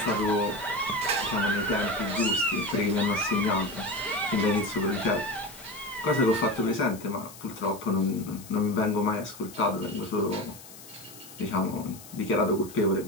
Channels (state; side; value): noise; left; hiss, 17 dB below the sound